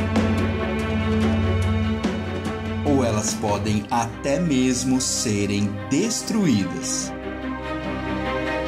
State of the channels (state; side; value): identical; both; correlation 1.00